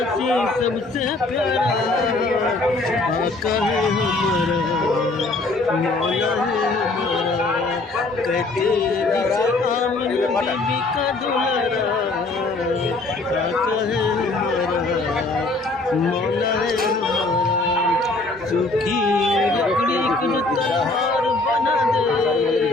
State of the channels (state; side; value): quieter; right; 3.2 dB